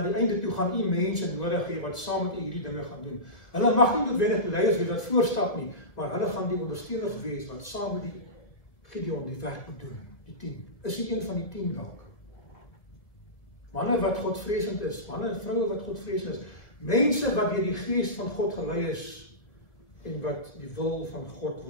die einde toe gaan u mense nodig hê wat saam met u hierdie dinge gaan doen. Hulle mag nie noodwendig die leiers wees wat voorstap nie, maar hulle gaan die ondersteuners wees wat saam met die Gideon die werk moet doen. Die 10. Is hy een van die 10 dalk? Manne wat Godvreesend is, manne en vroue wat Godvreesend is, mense wat deur die Gees van God gelei is en wat die wil van God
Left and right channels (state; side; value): late; right; 1.9 ms